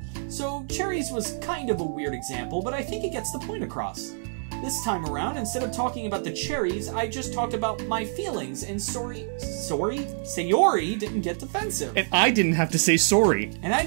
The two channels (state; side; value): silent; left; digital silence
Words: so cherries was kind of a weird example, but I think it gets the point across. This time around, instead of talking about the cherries, I just talked about my feelings, and Sayori didn't get defensive. And I didn't have to say sorry. And I